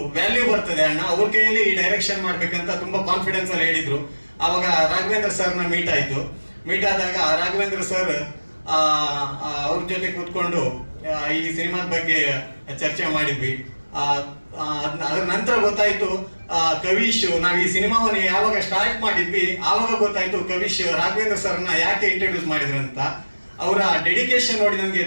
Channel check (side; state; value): both; inverted; correlation -1.00